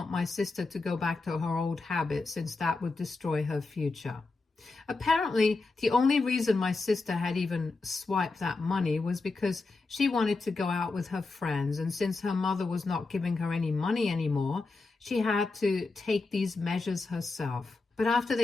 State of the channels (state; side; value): quieter; right; 3.7 dB